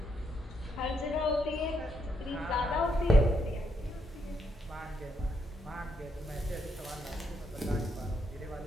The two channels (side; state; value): both; normal; correlation 0.77